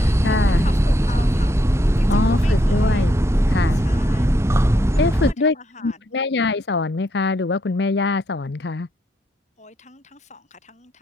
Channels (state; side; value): normal; both; correlation 0.76